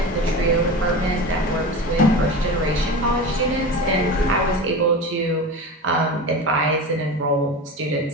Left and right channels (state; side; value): normal; both; correlation 0.28